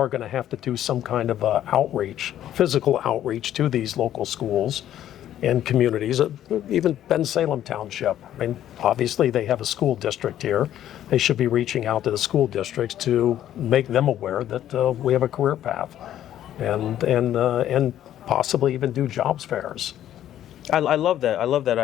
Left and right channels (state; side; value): quieter; right; 11.7 dB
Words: going to have to do some kind of physical outreach to these local schools and communities, even Salem Township. I mean, obviously they have a school district here. They should be reaching out to the school districts to make them aware that we have a career path, and possibly even do jobs fairs. I love that. I love that